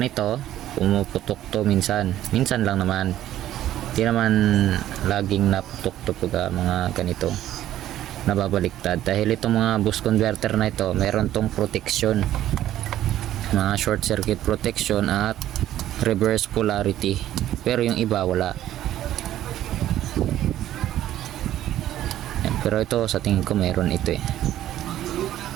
ganito, pumuputok to minsan lang naman, hindi naman laging naputok to pag mga ganito nababaliktad, dahil itong mga boost converter na ito meron tong protection. mga short circuit protection at reverse polarity, pero yung iba wala. Yan, pero ito sa tingin ko meron ito eh.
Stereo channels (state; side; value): quieter; left; 12.8 dB